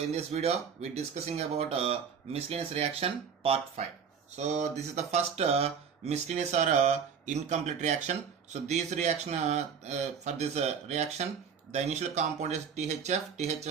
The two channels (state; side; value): quieter; left; 6.8 dB